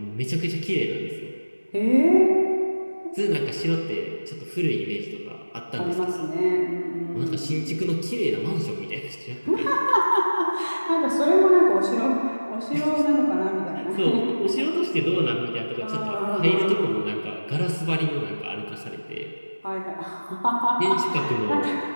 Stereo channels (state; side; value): inverted; both; correlation -1.00